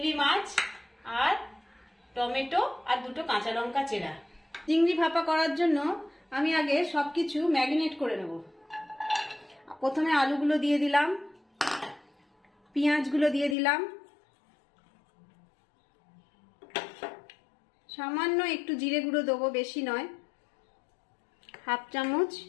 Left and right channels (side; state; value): right; drops out; at 13.6 s